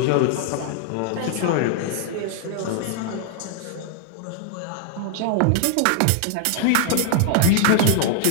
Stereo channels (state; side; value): different; both; correlation 0.00